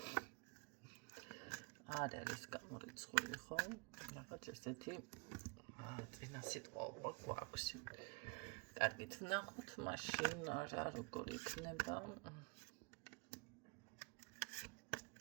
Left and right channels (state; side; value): quieter; left; 32.5 dB